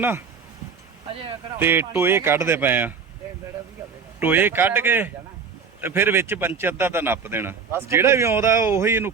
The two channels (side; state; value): left; quieter; 5.8 dB